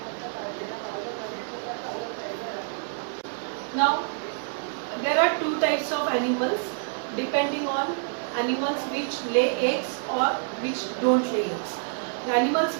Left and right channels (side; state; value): left; silent; digital silence